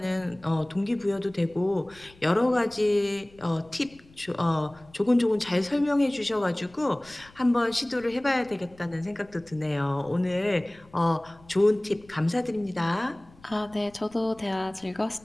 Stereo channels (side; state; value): left; noise; rumble, 26 dB below the sound